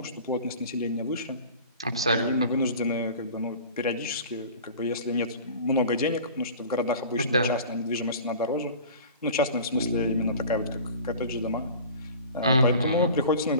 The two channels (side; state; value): both; inverted; correlation -0.40